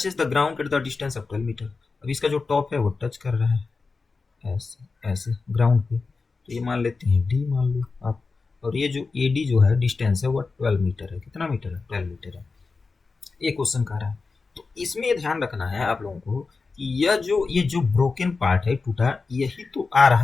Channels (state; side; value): quieter; right; 4.3 dB